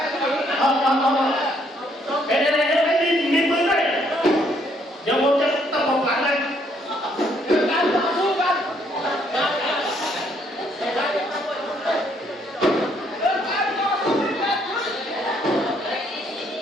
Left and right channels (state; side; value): normal; both; correlation 0.69